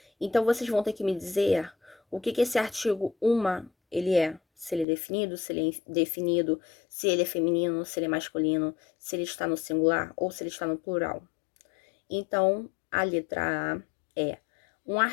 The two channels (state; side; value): drops out; right; at 4.9 s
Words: Então, vocês vão ter que me dizer o que esse artigo uma ele é. Se ele é definido, se ele é indefinido, se ele é feminino, se ele é masculino, se ele está no singular ou se ele está no plural. Então, a letra A é um